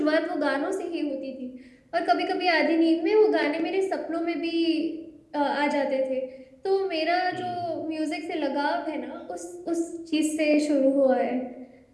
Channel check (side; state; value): both; identical; correlation 1.00